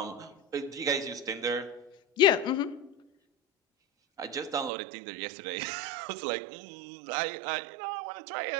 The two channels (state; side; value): drops out; left; at 4.7 s